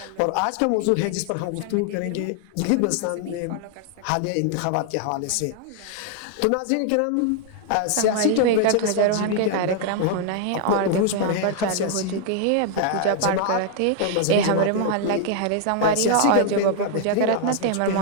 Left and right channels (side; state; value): both; different; correlation 0.00